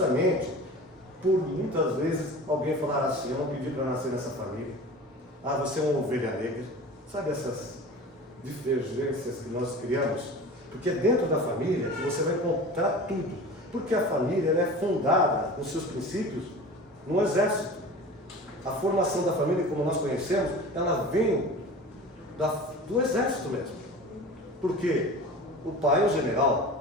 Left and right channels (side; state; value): both; normal; correlation 0.36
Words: por muitas vezes alguém falar assim: eu não pedi para nascer nessa família. Ah, você é uma ovelha negra. Sabe essas divergências que nós criamos? Porque é dentro da família que você vai encontrar tudo. Porque a família ela é fundada, nos seus princípios, no exército. A formação da família, como nós conhecemos, ela vem do exército mesmo. Porque o pai é o